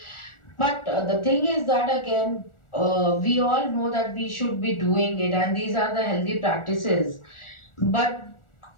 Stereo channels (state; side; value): late; right; 1.4 ms